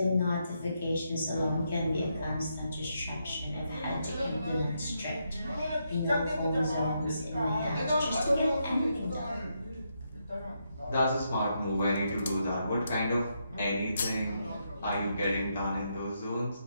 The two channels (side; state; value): both; inverted; correlation -0.80